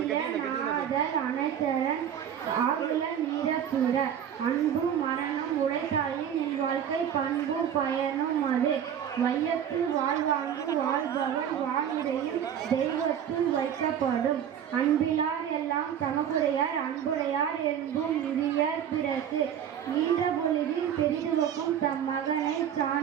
நாதல் அனைத்தரன் ஆகுல நீரத்துற. அன்பு மரணம் உழைத்தாயின் என் வாழ்க்கை பண்பு பயனும் அது. வையத்தில் வாழ்வாங்கு வாழ்பவன் வாழ்வுரையும் தெய்வத்தில் வைக்கப்படும். அன்பிலார் எல்லாம் தமக்குடையார் அன்புடையார் என்பும் முதியார் பிறகு. ஈன்ற பொழுதில் பெரிதுவக்கும் தம் மகனை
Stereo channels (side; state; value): left; quieter; 9.1 dB